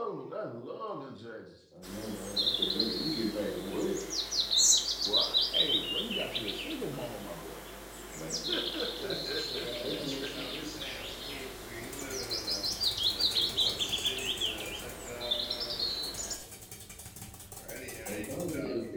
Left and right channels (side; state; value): both; identical; correlation 1.00